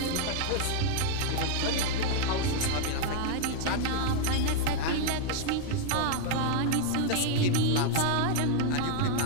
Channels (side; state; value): both; different; correlation 0.00